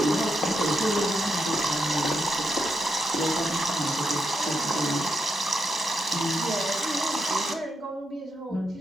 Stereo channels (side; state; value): both; normal; correlation 0.83